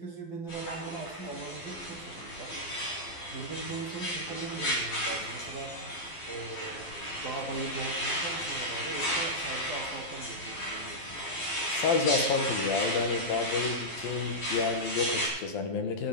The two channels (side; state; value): right; late; 12 ms